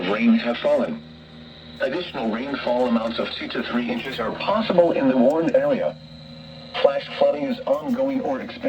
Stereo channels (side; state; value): both; identical; correlation 1.00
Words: rain have fallen. Additional rainfall amounts of 2 to 3 inches are possible in the warned area. Flash flooding is ongoing or